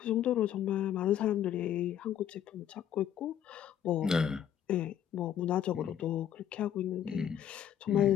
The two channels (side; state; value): right; quieter; 9.9 dB